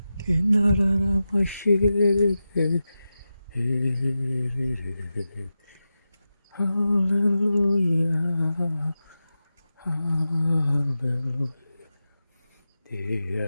Kinarara masyir. Haleluya. Haleluya.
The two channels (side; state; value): both; inverted; correlation -0.92